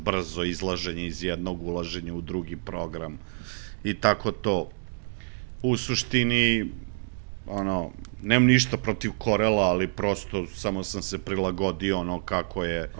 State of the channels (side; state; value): left; silent; digital silence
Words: izlaženje iz jednog, ulaženje u drugi program i tako to. U suštini, ono, nemam ništa protiv Corela, ali prosto samo sam se prilagodio ono